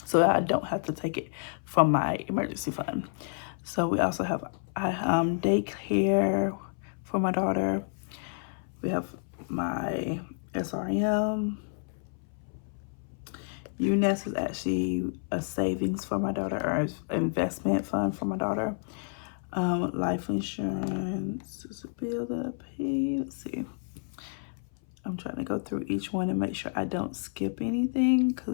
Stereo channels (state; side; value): silent; right; 58 dB below the other